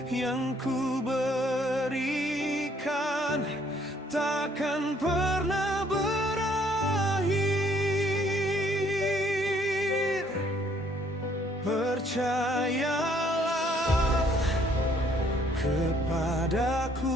yang ku berikan takkan pernah berakhir. Percayalah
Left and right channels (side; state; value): both; normal; correlation 0.64